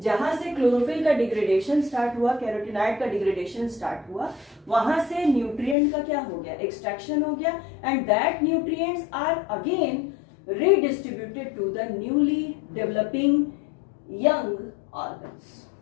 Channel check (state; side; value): drops out; right; at 5.8 s